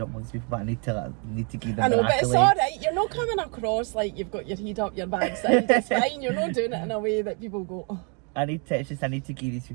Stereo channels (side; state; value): left; quieter; 36.8 dB